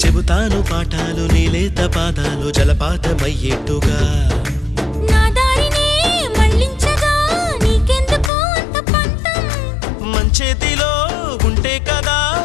చెబుతాను పాఠాలు నీలేత పాదాలు జలపాతమయ్యేట్టుగా నా దారినే మళ్ళించగా నీకెందుకు అంత పంతం మంచేతిలో ఉంటే కదా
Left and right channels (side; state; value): right; drops out; at 8.3 s